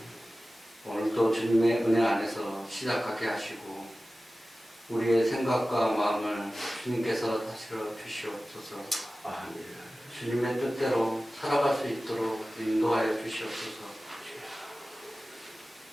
오늘도 주님의 은혜 안에서 시작하게 하시고 우리의 생각과 마음을 주님께서 다스려 주시옵소서. 아멘. 주님의 뜻대로 살아갈 수 있도록 인도하여 주시옵소서.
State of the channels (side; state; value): both; normal; correlation 0.96